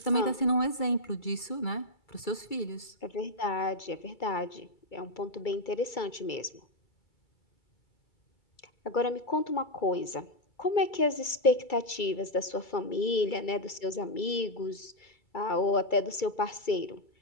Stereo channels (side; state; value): right; late; 2.3 ms